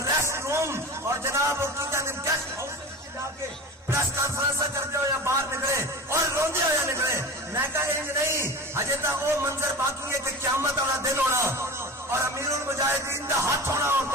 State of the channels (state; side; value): normal; both; correlation 0.32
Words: روم اور جناب گیسٹ ہاؤس جا کے پریس کانفرنس کرتے ہو یا باہر نکلے اور روندے ہو یا نکلے. میں کہا انج نہیں, ہجے تک وہ منظر باقی ہے کہ قیامت والا دن ہونا اور امیر المجاہدین کا ہاتھ ہونا اور